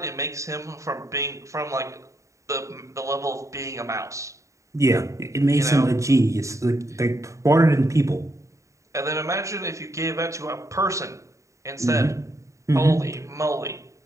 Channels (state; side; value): late; left; 0.15 ms